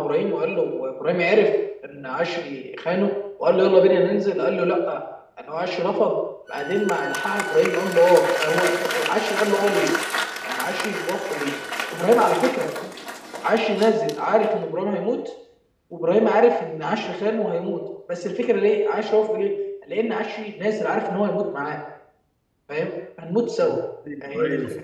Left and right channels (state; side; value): identical; both; correlation 1.00